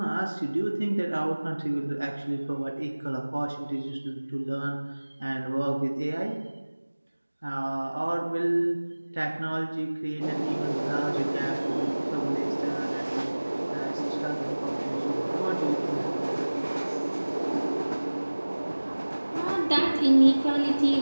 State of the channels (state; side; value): inverted; both; correlation -1.00